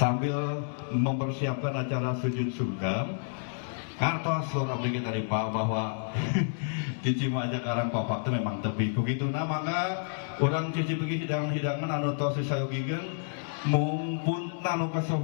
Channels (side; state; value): right; silent; digital silence